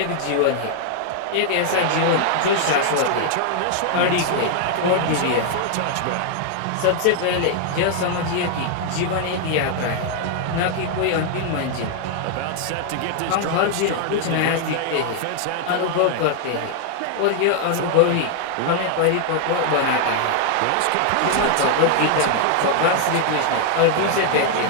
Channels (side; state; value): both; different; correlation 0.00